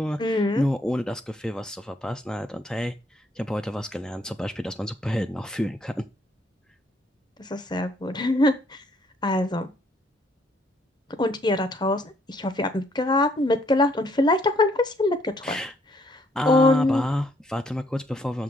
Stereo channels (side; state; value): both; normal; correlation 0.67